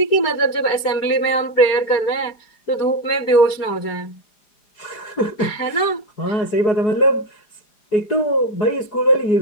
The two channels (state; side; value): late; right; 4.9 ms